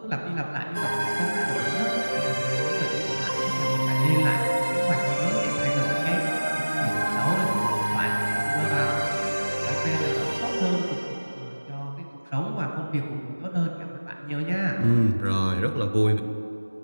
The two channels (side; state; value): both; inverted; correlation -1.00